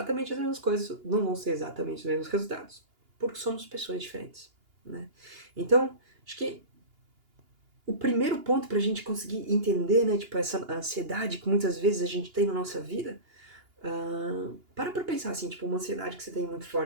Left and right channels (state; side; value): late; left; 2.8 ms